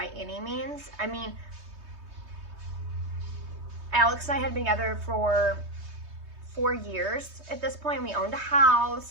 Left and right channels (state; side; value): late; left; 3.2 ms